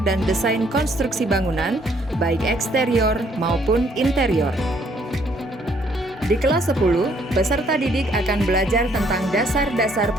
dan desain konstruksi bangunan, baik eksterior maupun interior. Di kelas 10, peserta didik akan belajar tentang dasar-dasar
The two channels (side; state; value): both; normal; correlation 0.66